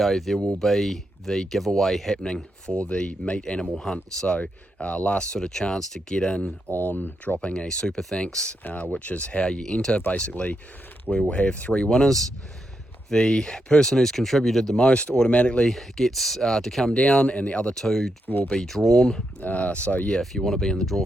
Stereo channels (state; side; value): normal; both; correlation 0.83